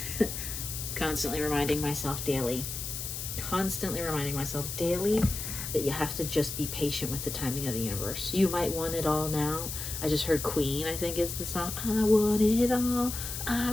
constantly reminding myself daily. Constantly reminding myself daily that you have to just be patient with the timing of the universe. You might want it all now. I just heard Queen, I think is the song. I want it all.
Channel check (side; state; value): left; noise; hiss, 6 dB below the sound